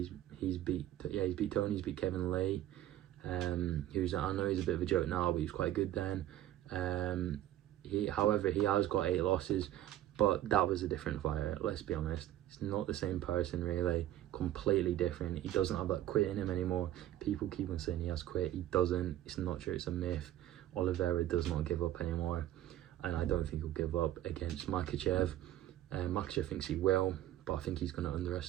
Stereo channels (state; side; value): quieter; left; 12.9 dB